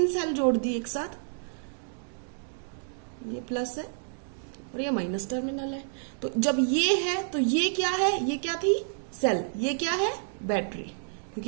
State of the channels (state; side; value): silent; left; digital silence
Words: सेल जोड़ दी एक साथ, ये प्लस है और ये माइनस टर्मिनल है। तो जब ये है तो ये क्या है? ये क्या थी? सेल। ये क्या है? बैटरी।